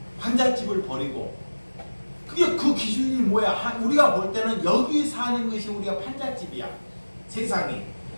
환자집을 버리고. 그게 그 기준이 뭐야? 우리가 볼 때는 여기 사는 것이 우리가 판잣집이야. 세상에.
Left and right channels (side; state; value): both; inverted; correlation -1.00